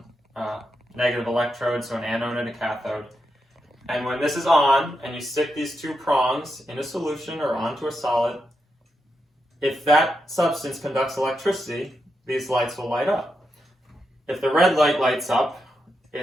negative electrode, so an anode and a cathode. And when this is on, and you stick these 2 prongs in a solution or onto a solid, if that substance conducts electricity, these lights will light up. If the red light lights up,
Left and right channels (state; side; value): normal; both; correlation 0.85